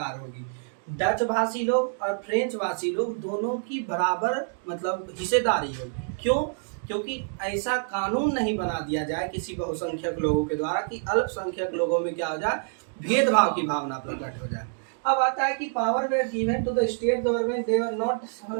होगी, डच भाषी लोग और फ्रेंच भाषी लोग दोनों की बराबर मतलब हिस्सेदारी होगी। क्यों? क्योंकि ऐसा कानून नहीं बना दिया जाए किसी बहुसंख्यक लोगों के द्वारा कि अल्पसंख्यक लोगों में क्या हो जाए, भेदभाव की भावना प्रकट हो जाए। अब आता है कि power were given to the state government, they were not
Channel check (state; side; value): silent; left; digital silence